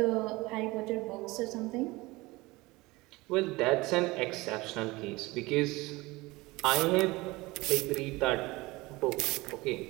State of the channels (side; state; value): left; quieter; 21.8 dB